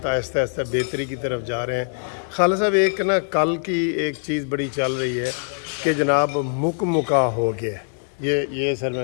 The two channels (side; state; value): right; silent; digital silence